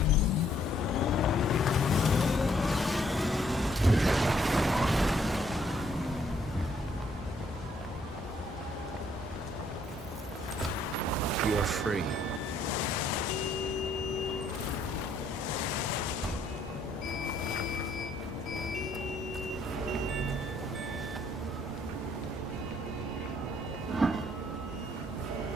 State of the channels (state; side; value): normal; both; correlation 0.67